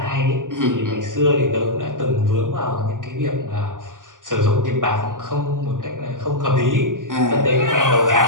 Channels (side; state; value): left; late; 0.88 ms